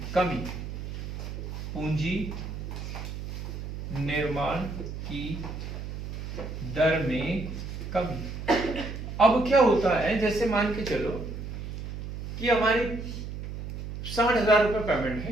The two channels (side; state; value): right; noise; hum, 7 dB below the sound